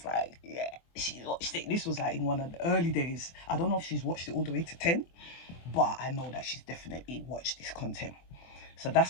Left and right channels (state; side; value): late; right; 24 ms